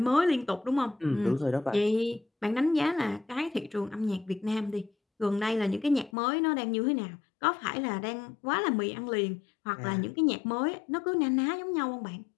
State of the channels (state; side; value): drops out; right; at 6.1 s